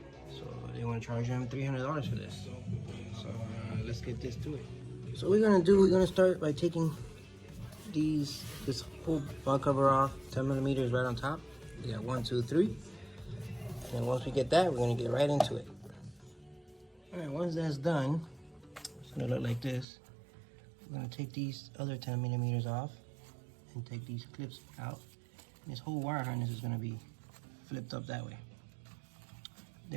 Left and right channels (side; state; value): left; drops out; at 19.9 s